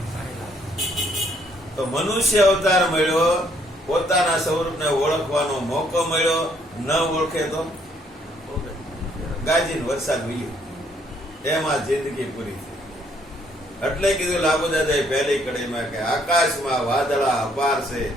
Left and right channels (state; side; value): normal; both; correlation 0.67